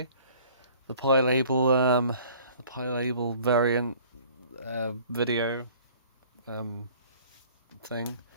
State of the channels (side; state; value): both; inverted; correlation -0.52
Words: label variant video thing.